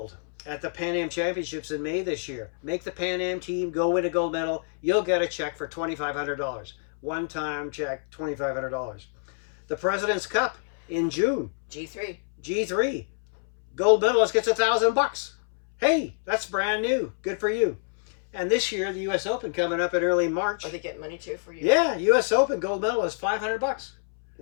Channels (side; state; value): right; silent; 60 dB below the other